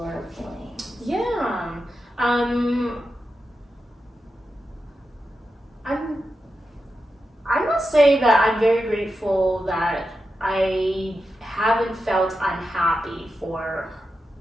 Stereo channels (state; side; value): normal; both; correlation 0.90